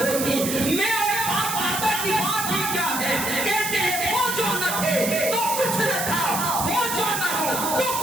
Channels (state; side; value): noise; right; hiss, 3 dB below the sound